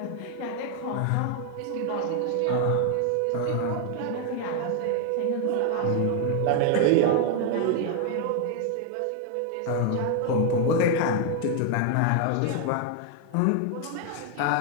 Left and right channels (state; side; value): different; both; correlation 0.00